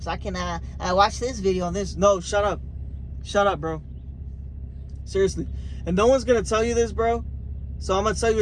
I can watch this video on this. No, shut up. Shut up, bro. Seriously. And no one's going to tell you this, bro. So I'm going to tell you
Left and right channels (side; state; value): both; identical; correlation 1.00